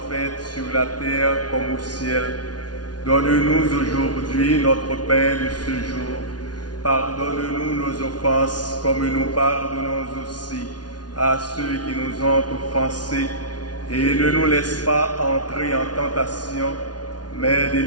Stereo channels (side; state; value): right; late; 0.69 ms